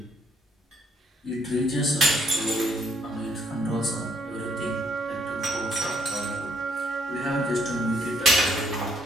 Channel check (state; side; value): normal; both; correlation 0.69